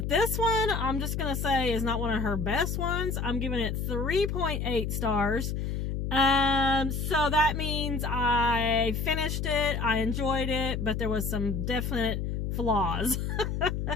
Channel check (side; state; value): left; noise; hum, 2 dB below the sound